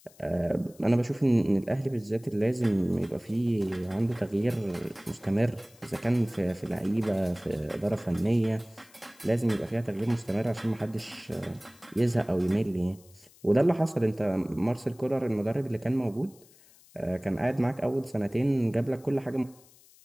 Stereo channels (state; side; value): noise; left; hiss, 26 dB below the sound